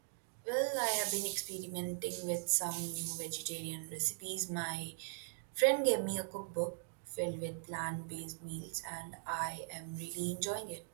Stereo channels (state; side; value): silent; left; digital silence